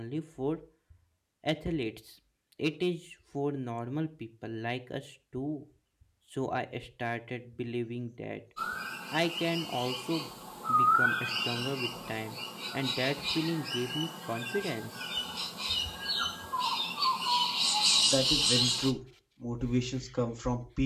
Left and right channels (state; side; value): identical; both; correlation 1.00